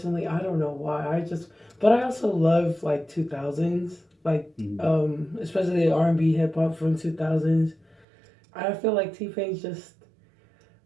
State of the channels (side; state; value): left; drops out; at 8.1 s